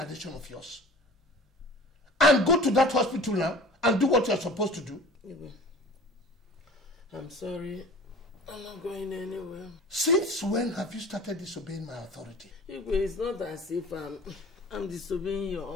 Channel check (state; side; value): normal; both; correlation 0.42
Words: of yours? And go to that hospital now and do what you're supposed to do? I'm sorry. I'm not going anywhere. Since when have you started disobeying my authority? It's not as if I'm disobeying your